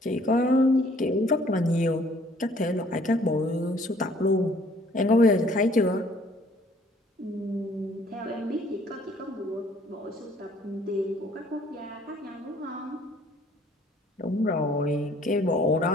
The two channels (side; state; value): both; normal; correlation 0.59